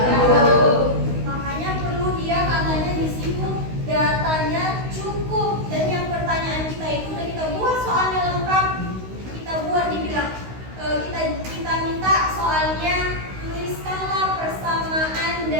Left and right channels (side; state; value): left; late; 16 ms